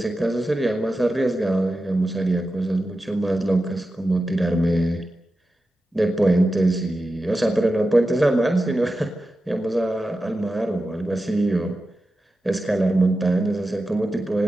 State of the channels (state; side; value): normal; both; correlation 0.92